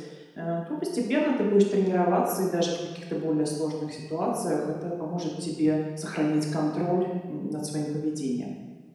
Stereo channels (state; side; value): identical; both; correlation 1.00